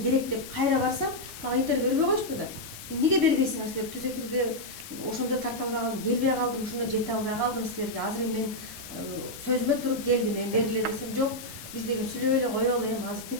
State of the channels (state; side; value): noise; left; hiss, 13 dB below the sound